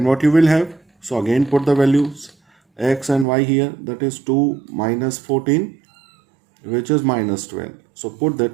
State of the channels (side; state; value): left; drops out; at 3.2 s